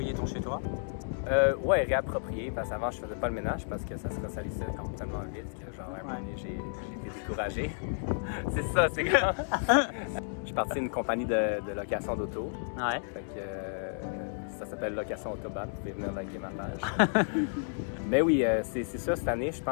ton chez toi? Ouais, réapproprier, parce qu'avant je faisais pas le ménage parce que ça se ressalissait complètement vite, que genre à un moment donné j'ai été découragé. C'est ça, je suis parti d'une compagnie de location d'auto. Ouais. Fait que Ça s'appelle Location Autobahn. Vous pouvez venir liker ma page. Mais oui, c'est ça, cette année, je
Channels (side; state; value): right; silent; digital silence